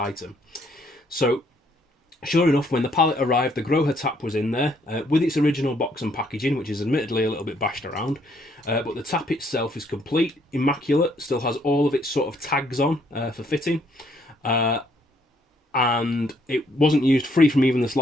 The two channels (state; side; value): normal; both; correlation 0.68